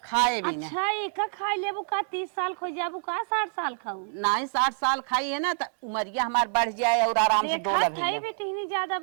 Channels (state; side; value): silent; left; digital silence